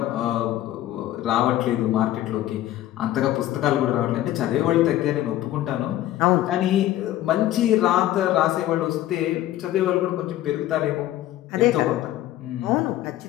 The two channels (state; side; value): quieter; right; 13.8 dB